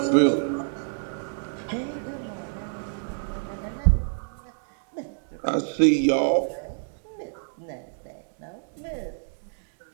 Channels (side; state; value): left; silent; digital silence